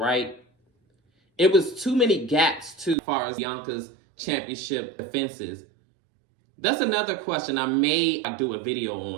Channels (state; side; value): drops out; left; at 3.0 s